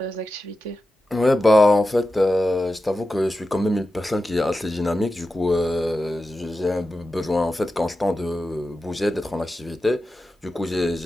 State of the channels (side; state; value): both; normal; correlation 0.92